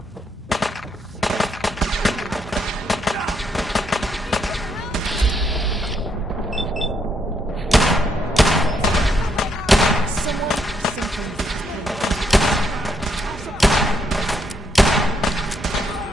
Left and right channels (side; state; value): both; normal; correlation 0.75